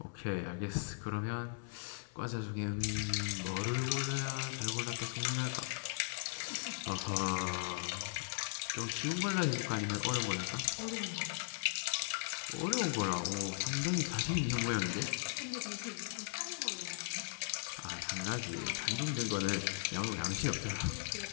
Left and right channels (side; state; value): right; silent; digital silence